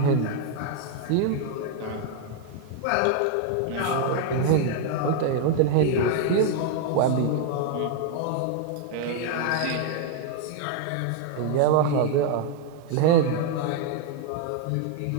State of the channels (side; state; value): both; different; correlation 0.00